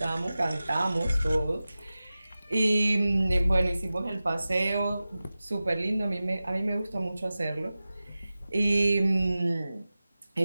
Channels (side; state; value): both; inverted; correlation -0.96